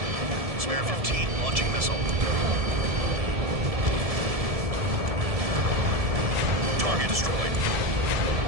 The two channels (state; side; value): late; left; 1.7 ms